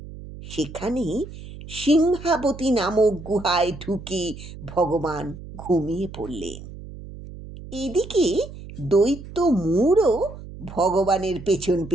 সেখানে সিংহাবতী নামক গুহায় ঢুকে ভগবান ঘুমিয়ে পড়লেন। এদিকে দৈত্য মূরও ভগবানের পেছন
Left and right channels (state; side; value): noise; right; hum, 14 dB below the sound